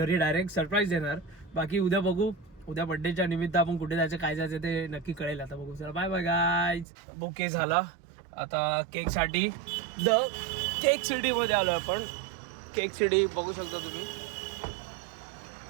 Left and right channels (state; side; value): drops out; left; at 6.9 s